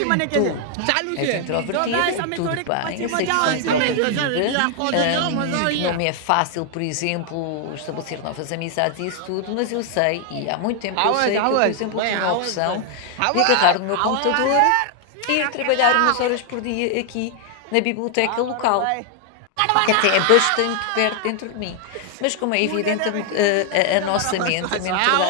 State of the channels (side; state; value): both; different; correlation 0.00